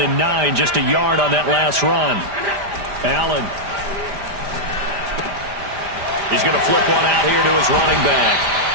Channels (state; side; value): late; left; 5.0 ms